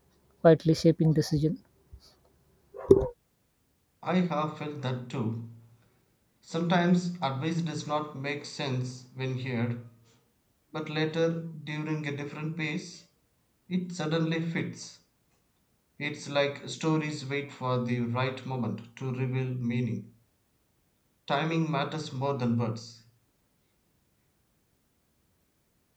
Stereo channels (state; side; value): identical; both; correlation 1.00